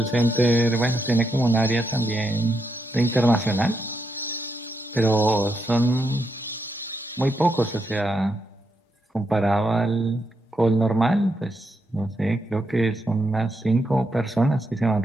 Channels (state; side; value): normal; both; correlation 0.82